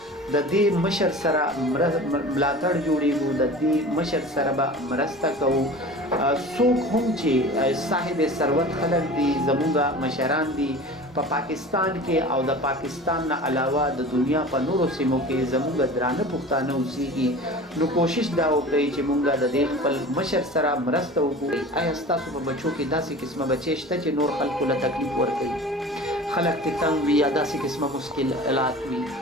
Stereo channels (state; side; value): normal; both; correlation 0.38